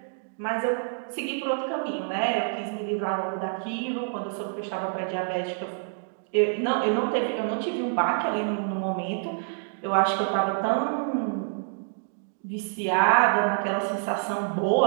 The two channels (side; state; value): left; silent; digital silence